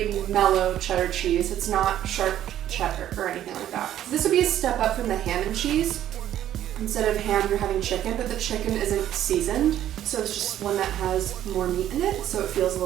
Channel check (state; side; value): quieter; left; 11.7 dB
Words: mellow cheddar cheese. It's not sharp cheddar or anything like that. This would be a step up from the ham and cheese. Instead of ham, you're having chicken, but the chicken isn't seasoned. So it's just one that has more meat in it, so it feels a